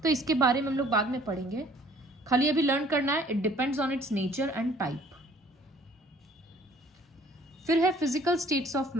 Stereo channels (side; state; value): both; normal; correlation 0.56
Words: तो इसके बारे में हम लोग बाद में पढ़ेंगे, खाली अभी लर्न करना है, it depends on it's nature and type. फिर है physical states of